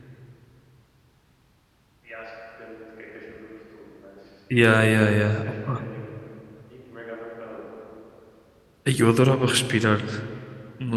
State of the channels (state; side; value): identical; both; correlation 1.00